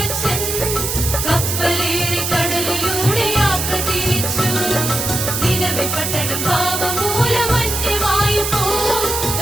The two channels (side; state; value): right; noise; hiss, 2 dB below the sound